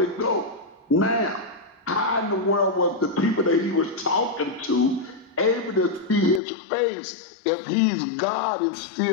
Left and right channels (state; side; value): drops out; right; at 6.4 s